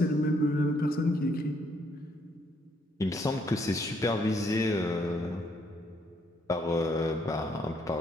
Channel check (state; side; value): normal; both; correlation 0.71